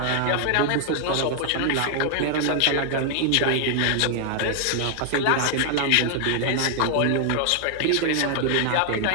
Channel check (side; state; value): both; different; correlation 0.00